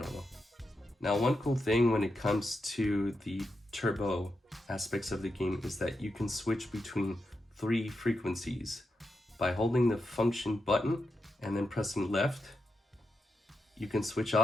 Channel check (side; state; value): both; normal; correlation 0.87